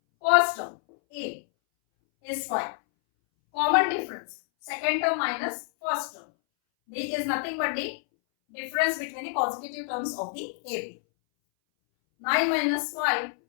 First term A is 5. Common difference, second term minus first term. D is nothing but the difference between the consecutive terms of the AP. 9 minus 5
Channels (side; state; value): right; silent; 60 dB below the other